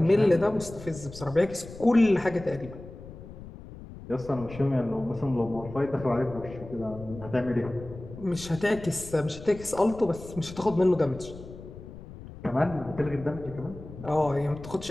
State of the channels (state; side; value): noise; left; rumble, 15 dB below the sound